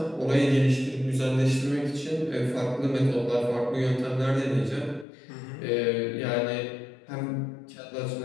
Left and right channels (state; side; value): drops out; right; at 5.1 s